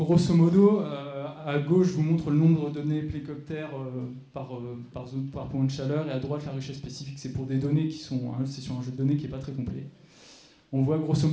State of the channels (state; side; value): identical; both; correlation 1.00